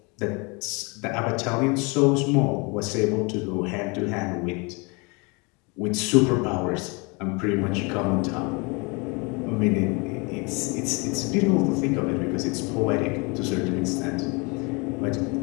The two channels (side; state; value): right; quieter; 29.6 dB